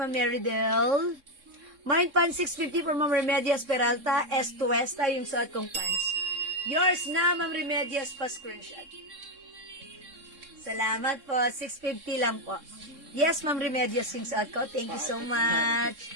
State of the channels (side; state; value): left; late; 3.7 ms